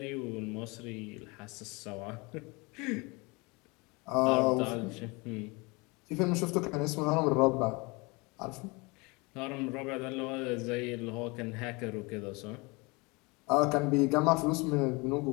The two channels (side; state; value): right; quieter; 26.9 dB